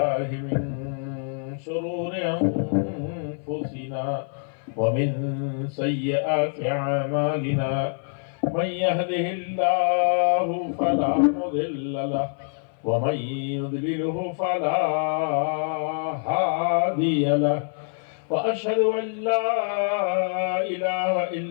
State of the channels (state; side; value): silent; right; 56 dB below the other